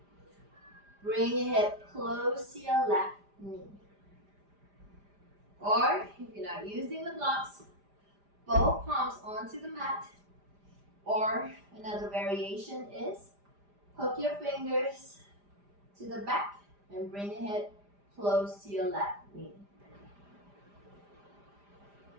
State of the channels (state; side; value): late; left; 5.0 ms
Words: Bring your head close to your left knee. Or, if you're not using the blocks, both palms onto the mat. Or, another variation is, hook your fingers to the back and bring your head close to your left knee.